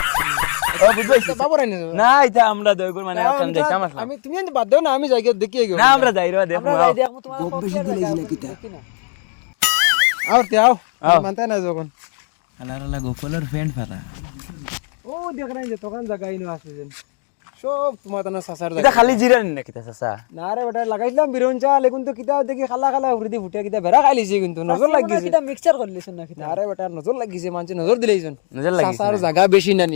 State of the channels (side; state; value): right; quieter; 39.5 dB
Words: বাবু রানি না এটা আমরা দয়গুর মানে কাম দেখতাম আসলে আমি তুমি এনে বাদ দাও না আমি জায়গা দেখি গেল না আমরা যাই রে দেখো আমরা যাই দেখো তোমার গপ বেশি দিলাইছি না কিতা আও তে আও মানতে না যখন আলালা গোপালের ফ্রেন্ড ফারা ও দেখ না যে দোকান জায়গা ইনো আছে যেন সব তোমার তানা সাসার এটা জায়গা খালি জিরানি না কিতা চাচা না রে বেটা লাগাইছিলাম বিরন চা লেগুন তো কিতা দেখি খালা খালা উড়দি ফুটে কিতা বেরা খাইলিছে কিন্তু নজর লাগিছে এটা মিক্সচার করলিছেন না কিতা আরে বেটা নজর লাগিছে মানছে নজর দিলাইছন নজর লাগিছে সাসার জায়গা বেশি না নি